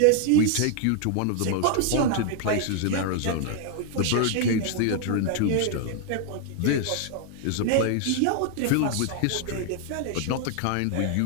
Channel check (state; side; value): different; both; correlation 0.00